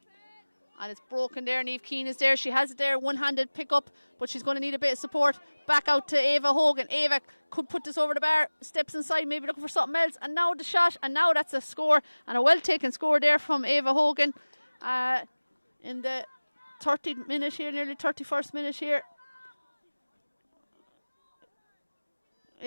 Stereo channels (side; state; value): both; inverted; correlation -1.00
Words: And it's broken there. Niamh Keane is there. She has it there. One-handed pick up, but she's going to need a bit of support. Back out to Ava Hogan. Ava could put this over the bar. Steps inside, maybe looking for something else. And now the shot. And now that's a score. And a well-taken score there from Ava Hogan. In the 30th minute here, nearly 31st minute here.